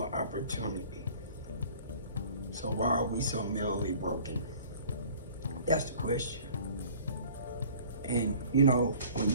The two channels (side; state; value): both; inverted; correlation -0.49